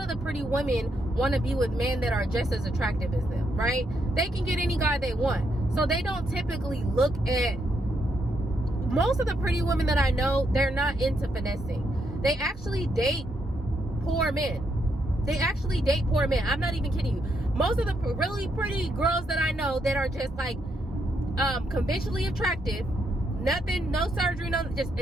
the pretty women want to be with men that are just as attractive as them, right? They can get any guy they want. So they don't typically look at, most of the pretty women that I know, they're not into finessing. They actually date poor men. They actually date poor men. I'm not even kidding you. Most of the really pretty girls that I know that are just like conventionally attractive, nothing, no surgery, no,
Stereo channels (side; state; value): both; normal; correlation 0.78